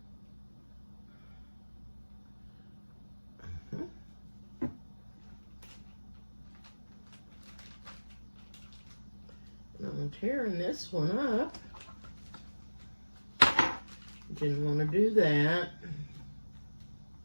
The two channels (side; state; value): both; inverted; correlation -1.00